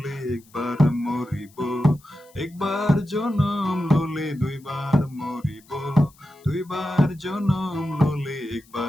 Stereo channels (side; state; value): left; noise; hiss, 28 dB below the sound